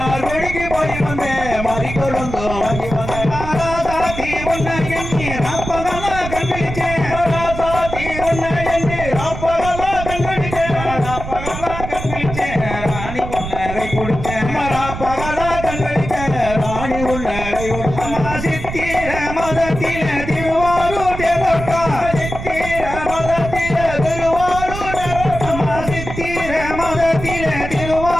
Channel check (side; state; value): right; noise; rumble, 8 dB below the sound